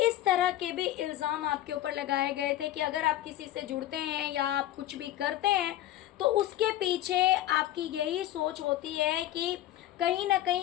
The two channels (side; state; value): right; quieter; 13.6 dB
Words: इस तरह के भी इल्ज़ाम आपके ऊपर लगाए गए थे कि अगर आप किसी से जुड़ते हैं या आप कुछ भी करते हैं तो उसके पीछे आपकी यही सोच होती है कि कहीं ना